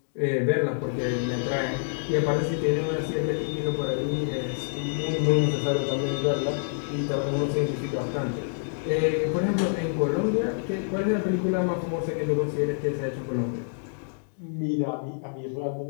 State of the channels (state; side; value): silent; right; digital silence